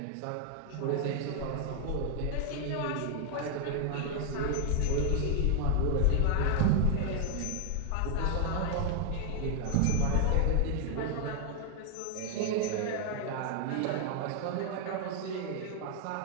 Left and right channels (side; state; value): both; different; correlation 0.00